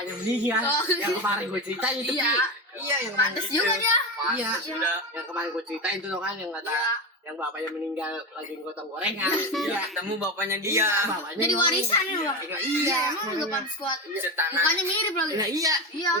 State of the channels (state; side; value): normal; both; correlation 0.18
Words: meninggal, Oh. yang kemarin gue ceritain itu. Iya. Iya, yang kemarin. Pantes juga dia. Iya. Sudah. Yang kemarin gue ceritain tuh kan yang kata yang bapaknya meninggal lagi gotong gorengan. Iya, ketemu bapaknya dia. bapaknya Jadi ngomong. warisan ya, Bang. Iya, Iya, emang enggak pantas kuat. Setanah. Mukanya mirip lagi. Iya, iya. Iya.